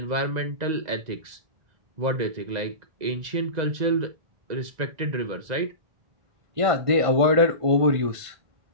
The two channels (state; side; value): late; left; 1.5 ms